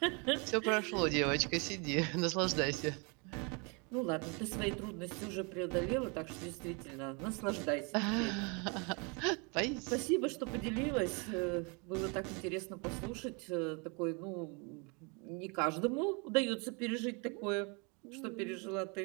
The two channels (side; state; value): left; quieter; 32.7 dB